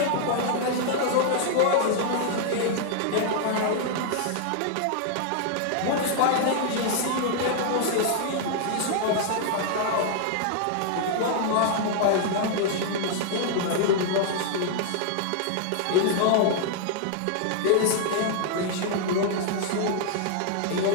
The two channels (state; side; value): different; both; correlation 0.00